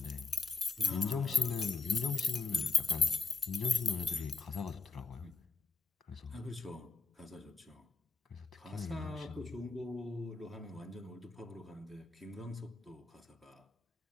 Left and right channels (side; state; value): right; quieter; 3.9 dB